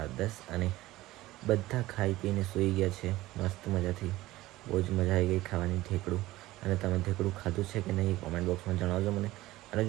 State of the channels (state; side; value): quieter; left; 17.3 dB